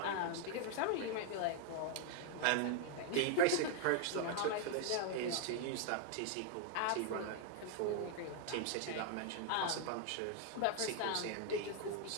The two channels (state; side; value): different; both; correlation 0.00